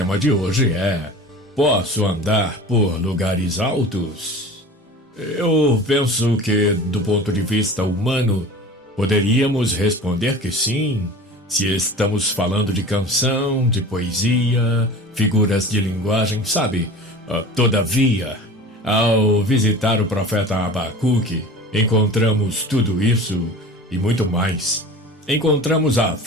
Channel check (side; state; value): both; normal; correlation 0.38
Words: de hoje é: posso andar por lugares altos? Eu penso que, do ponto de vista humano, poderíamos responder que sim, se estamos falando de canção, de poesia, figuras de linguagem, sabe? Todavia, ao visitar o profeta Abacuque, encontramos tudo isso e muito mais. Encontramos a